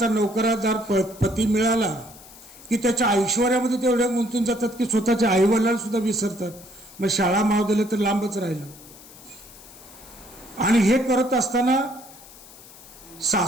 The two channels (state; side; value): noise; left; hiss, 20 dB below the sound